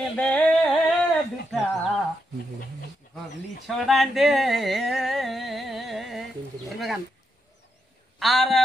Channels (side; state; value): both; normal; correlation 0.82